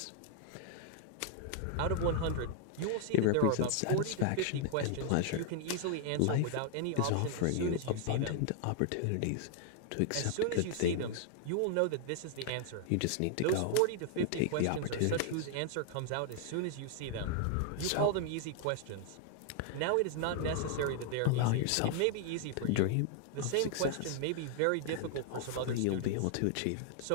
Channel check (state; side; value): different; both; correlation 0.00